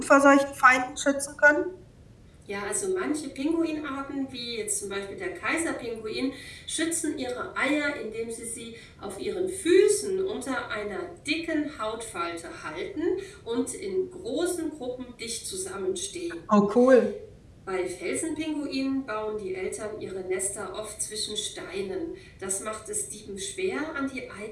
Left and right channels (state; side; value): identical; both; correlation 1.00